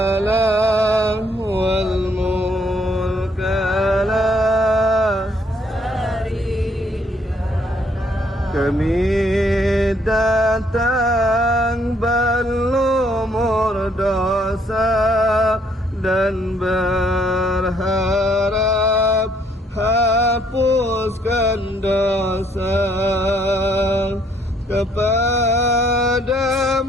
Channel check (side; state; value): both; normal; correlation 0.67